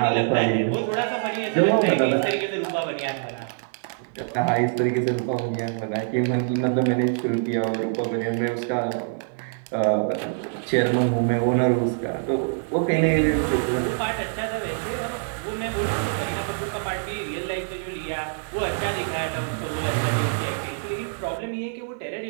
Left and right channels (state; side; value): silent; left; digital silence